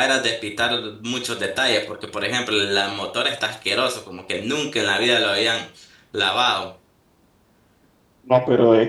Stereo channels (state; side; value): identical; both; correlation 1.00